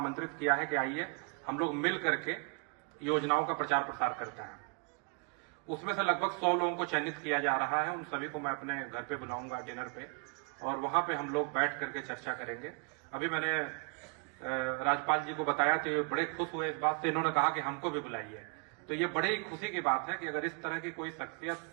किया है कि आइए हम लोग मिल करके योजनाओं का प्रचार प्रसार करते हैं। उसमें से लगभग 100 लोगों को चयनित किया जा रहा है। उन सभी को मैं अपने घर पे बुलाऊंगा डिनर पे, और वहां पे हम लोग बैठ करके चर्चा करेंगे। अभी मैंने राजपाल जी को बताया तो ये बड़े खुश हुए इस बात से, इन्होंने कहा कि हमको भी बुलाइए। तो ये बड़ी ही खुशी की बात है कि अगर इस तरह की कोई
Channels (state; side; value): quieter; left; 35.5 dB